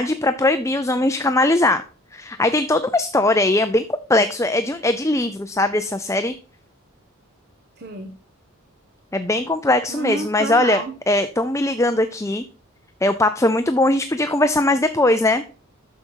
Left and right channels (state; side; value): normal; both; correlation 0.56